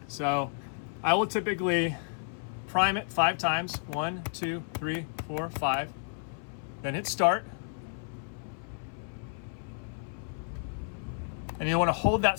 So I will typically prime it 5 times. 1, 2, 3, 4, 5. Then hit start. And you want to hold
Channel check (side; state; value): right; silent; 57 dB below the other